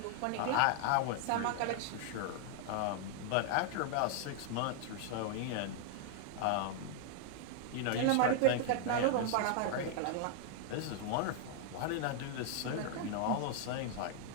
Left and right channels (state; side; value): different; both; correlation 0.00